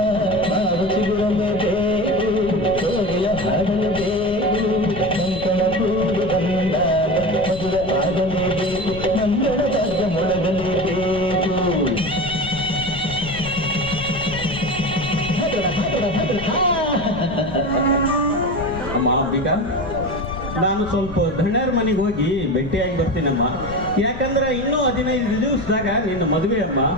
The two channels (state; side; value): noise; left; rumble, 11 dB below the sound